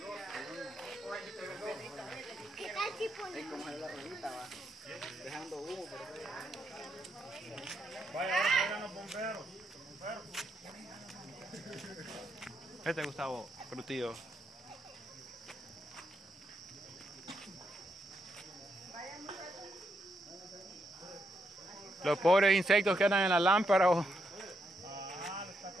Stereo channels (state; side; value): normal; both; correlation 0.80